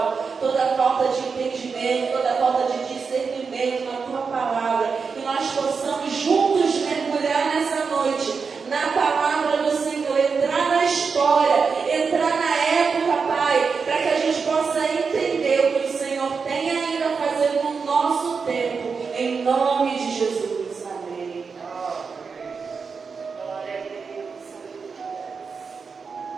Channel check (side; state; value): left; quieter; 5.3 dB